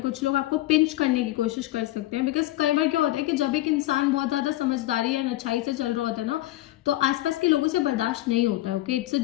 कुछ लोग आपको पिंच करने की कोशिश कर सकते हैं, बिकॉज कई बार क्या होता है कि जब एक इंसान बहुत ज्यादा समझदारी या अच्छाई से चल रहा होता है ना तो आसपास के लोगों से बर्दाश्त नहीं होता है। Okay, it's a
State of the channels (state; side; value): quieter; right; 16.4 dB